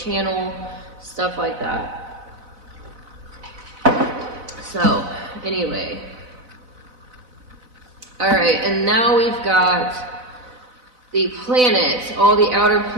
stuff like that. So, anyway. Alright, and now we've got the planets. All the outer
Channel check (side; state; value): left; late; 4.0 ms